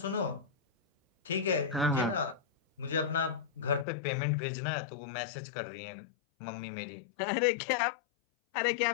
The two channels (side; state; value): right; drops out; at 3.9 s